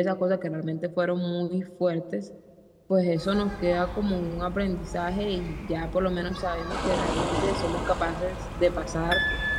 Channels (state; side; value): identical; both; correlation 1.00